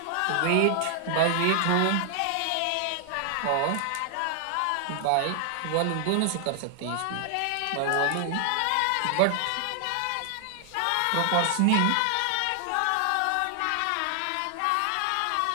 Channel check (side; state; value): both; different; correlation 0.00